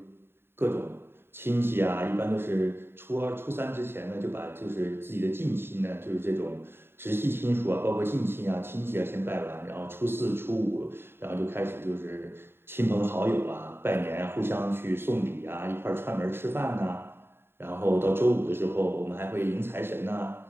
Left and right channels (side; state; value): left; late; 0.11 ms